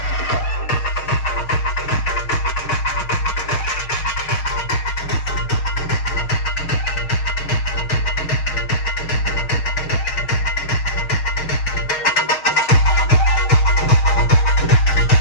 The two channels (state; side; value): late; right; 6.4 ms